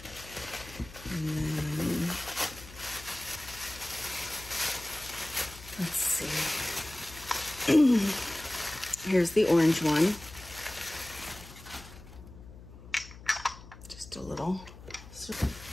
then, let's see. Here's the orange one. Just a little.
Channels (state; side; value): noise; left; hum, 17 dB below the sound